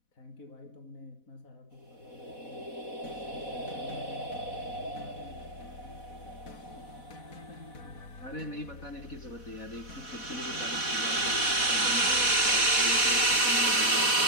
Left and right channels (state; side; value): late; right; 4.1 ms